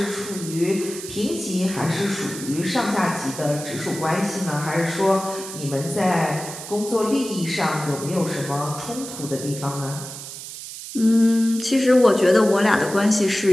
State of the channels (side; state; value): right; noise; hiss, 11 dB below the sound